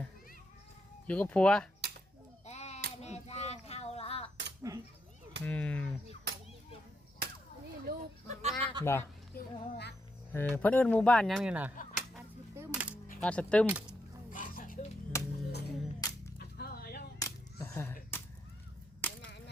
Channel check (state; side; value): normal; both; correlation 0.80